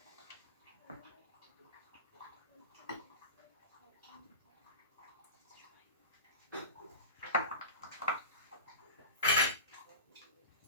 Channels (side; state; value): both; inverted; correlation -0.30